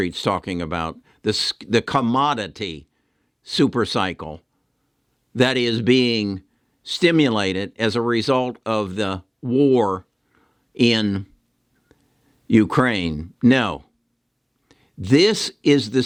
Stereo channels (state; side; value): identical; both; correlation 1.00